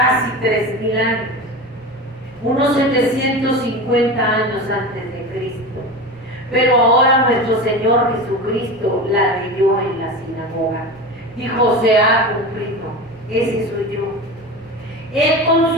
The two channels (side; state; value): both; normal; correlation 0.27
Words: 3,000 años, unos 750 años antes de Cristo. Pero ahora nuestro Señor Jesucristo la leyó en la sinagoga. Dijo: se ha cumplido. Ese soy yo. Él con